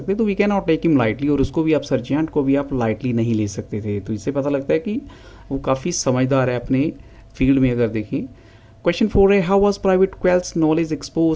तो we can not take him lightly, और उसको भी आप सर्जियंट को भी आप लाइटली नहीं ले सकते थे। तो इससे पता लगता है कि वो काफ़ी समझदार है अपने फील्ड में। अगर देखें क्वेश्चन 4 है, how was private Quelch knowledge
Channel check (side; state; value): both; identical; correlation 1.00